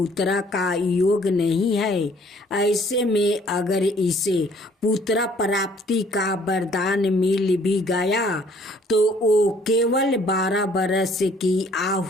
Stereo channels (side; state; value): both; normal; correlation 0.59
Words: का योग नहीं है। ऐसे में अगर इसे पुत्र प्राप्ति का वरदान मिल भी गया तो वो केवल 12 बरस की